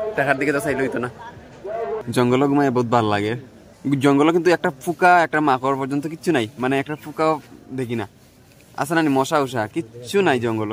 টাকার দিকে তো চাইলে হইতো না। জঙ্গল ঘুমায় বহুত ভালো লাগে। জঙ্গলে কিন্তু একটা ফুকা একটা মাকড় পর্যন্ত কিচ্ছু নাই, মানে একটা ফুকাও দেখি না। আছে না মশা উষা কিচ্ছু নাই, জঙ্গল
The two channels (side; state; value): both; identical; correlation 1.00